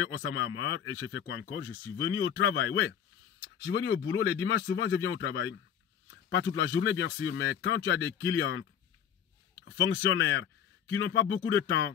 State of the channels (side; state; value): right; quieter; 8.8 dB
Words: Osama Hamar et j'ai fait quoi encore? Je suis venu au travail, ouais. Je suis venu au boulot. Les dimanches, souvent, je viens au travail. Pas toute la journée, bien sûr, mais quand tu as des clients, fonctionnaires, qui n'ont pas beaucoup de temps,